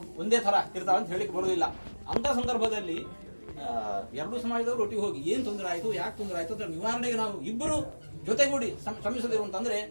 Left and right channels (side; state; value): both; inverted; correlation -1.00